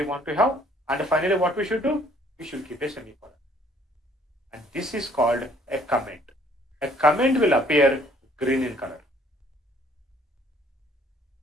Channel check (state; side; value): normal; both; correlation 0.60